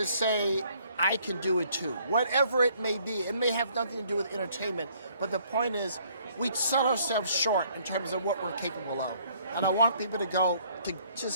say, I can do it too. Whatever it may be, it may have nothing to do with entertainment, but the point is, we sell ourselves short in terms of what we're capable of. And I want people to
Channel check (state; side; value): inverted; both; correlation -0.63